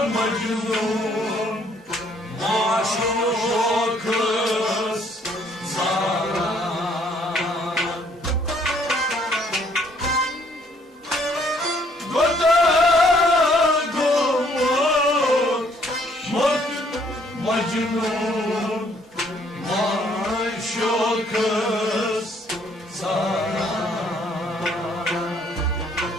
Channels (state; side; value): normal; both; correlation 0.65